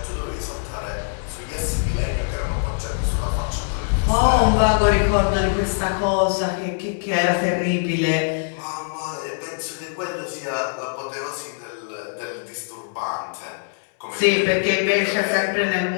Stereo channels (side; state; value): right; silent; 63 dB below the other